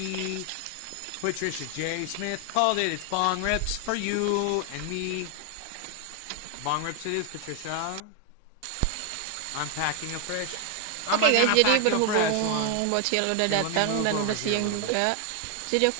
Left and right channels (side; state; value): both; different; correlation 0.01